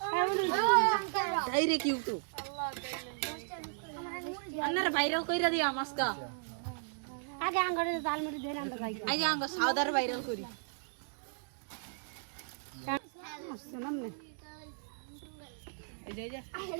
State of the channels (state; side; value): silent; left; digital silence